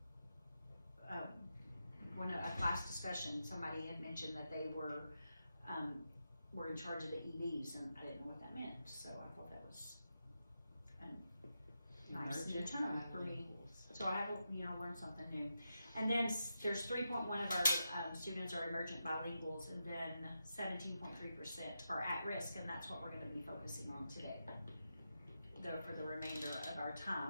when a class discussion. Somebody had mentioned that they were in charge of the EVs, and I didn't know what that meant. So I thought that was a nice new term for me. So I have learned something new. And then there's 3.1 of our students are emergent bilinguals, and then 17.3% are at risk, and that's what we're going to be focusing on today. For the remainder of our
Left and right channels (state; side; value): inverted; both; correlation -0.87